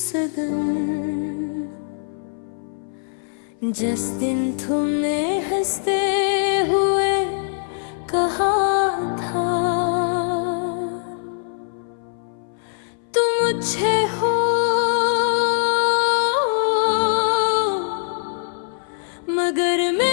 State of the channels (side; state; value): right; silent; 59 dB below the other